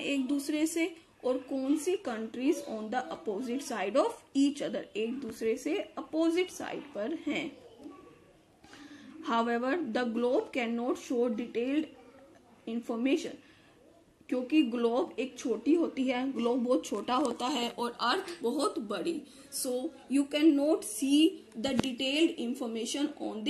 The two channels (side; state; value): both; identical; correlation 1.00